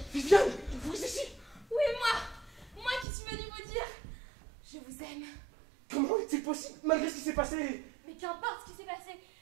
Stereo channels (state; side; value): drops out; left; at 3.1 s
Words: Viviane, vous ici? Oui, moi qui suis venue vous dire, je vous aime. Comment est-il possible, malgré ce qui s'est passé? Mais qu'importe ce qui s'est passé,